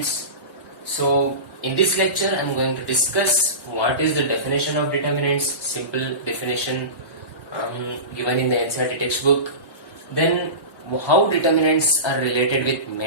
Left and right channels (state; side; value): late; right; 1.1 ms